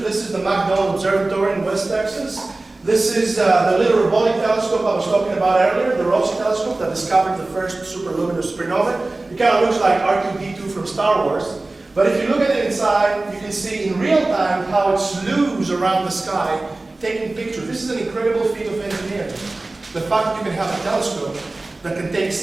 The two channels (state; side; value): quieter; left; 3.0 dB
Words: is the McDonald Observatory in West Texas. This is the little robotic telescope I was talking about earlier, the Rossi telescope that discovered the first superluminous supernova. It kind of looks like R2-D2 from Star Wars. But if you look at it inside, you can see in real time how it slews around the sky, taking pictures. This is an incredible feat of engineering. The fact that you can have a telescope that can take